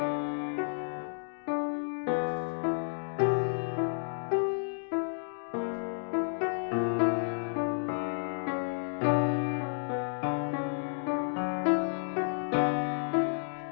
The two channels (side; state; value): right; silent; digital silence